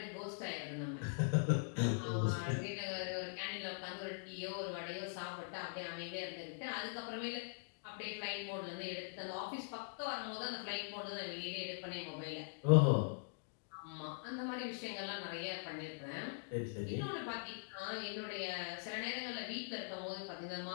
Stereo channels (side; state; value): right; silent; digital silence